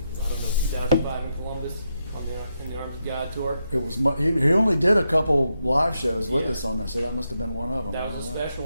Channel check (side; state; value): both; inverted; correlation -0.83